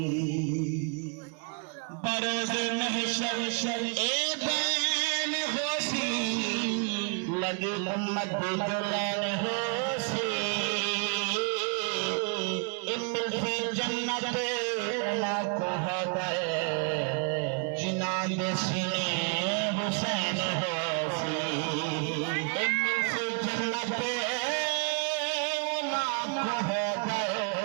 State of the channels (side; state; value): left; quieter; 37.4 dB